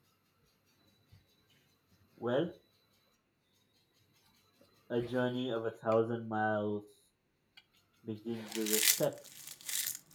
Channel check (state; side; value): identical; both; correlation 1.00